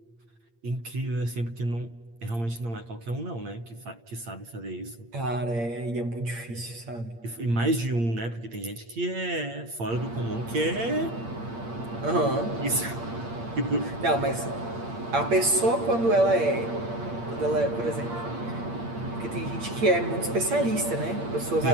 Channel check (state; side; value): late; left; 8.7 ms